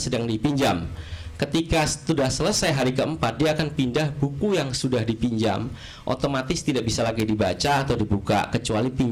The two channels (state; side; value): identical; both; correlation 1.00